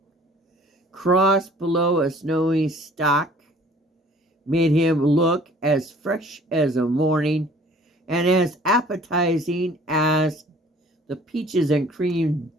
crossed below a snowy stock, made him look as fresh as a morning and as appetizing as the peaches and cream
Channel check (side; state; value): both; normal; correlation 0.53